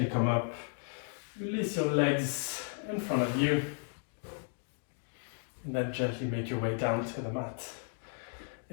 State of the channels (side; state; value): right; silent; 55 dB below the other